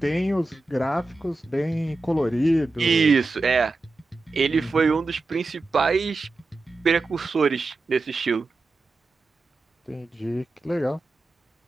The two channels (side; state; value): left; quieter; 3.2 dB